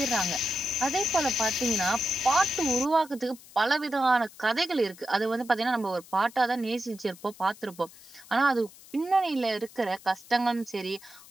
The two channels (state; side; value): noise; left; hiss, 21 dB below the sound